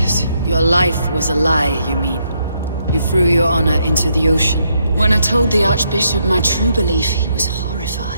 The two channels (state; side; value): inverted; both; correlation -0.76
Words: Your life was a lie, you mean? You threw your honor into the ocean. When I told the Archbishop my true belief, he was